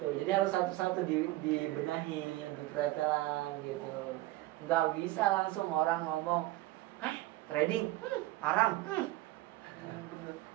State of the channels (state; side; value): quieter; left; 17.6 dB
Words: Jadi harus satu-satu dibenahi, dipretelan gitu. Nggak bisa langsung orang ngomong, trading haram.